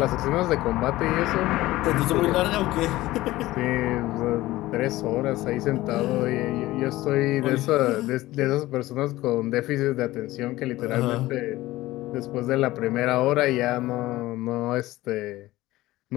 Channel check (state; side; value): quieter; right; 17.3 dB